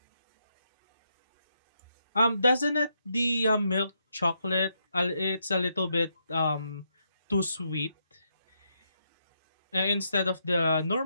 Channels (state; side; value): inverted; both; correlation -0.79